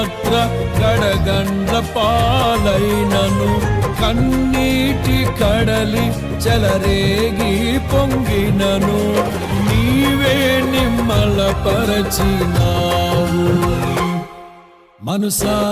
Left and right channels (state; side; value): identical; both; correlation 1.00